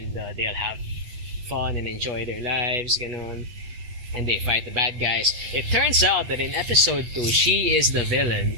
they'll have fun and enjoy their lives, and they fight the bad guys. It turns out that in episode 2, she is the villain,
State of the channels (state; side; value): late; left; 8.5 ms